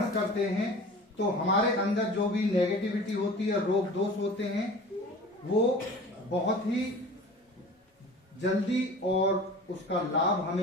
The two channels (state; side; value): normal; both; correlation 0.40